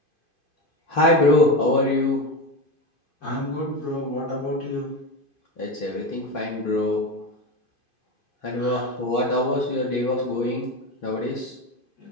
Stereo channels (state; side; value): late; right; 2.5 ms